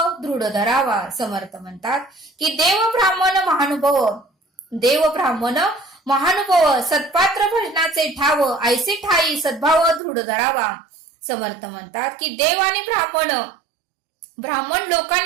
दृढ धरावा. समर्थ म्हणतात की देव ब्राह्मण महानुभाव सत्पात्र भजनाचे ठाव ऐसे ठाई सद्भाव दृढ धरावा. समर्थ म्हणतात की देव आणि ब्राह्मण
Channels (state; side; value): drops out; left; at 10.0 s